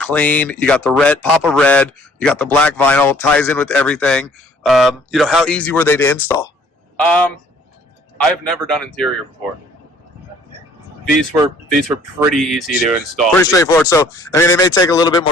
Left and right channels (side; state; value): both; normal; correlation 0.57